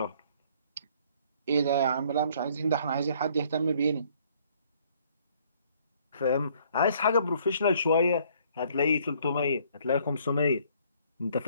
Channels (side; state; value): both; inverted; correlation -0.62